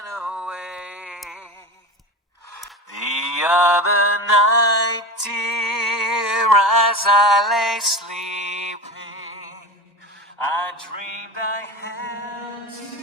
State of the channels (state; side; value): normal; both; correlation 0.27